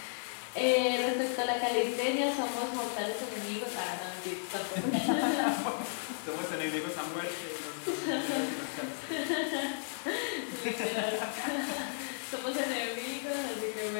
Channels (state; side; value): silent; right; digital silence